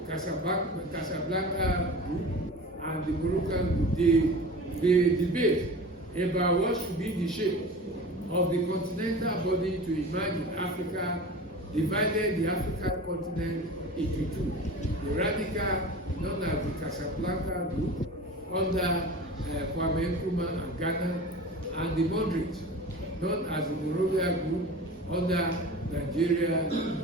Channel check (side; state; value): both; normal; correlation 0.36